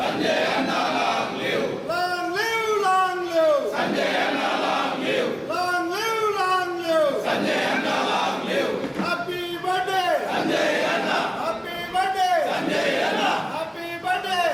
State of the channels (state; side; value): identical; both; correlation 1.00